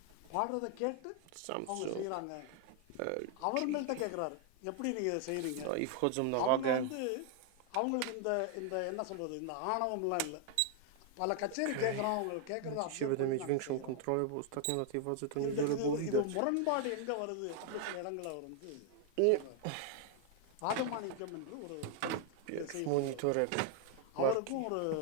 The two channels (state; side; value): different; both; correlation 0.00